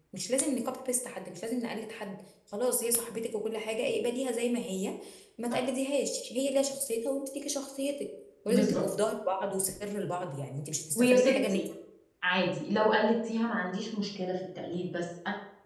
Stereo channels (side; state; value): both; identical; correlation 1.00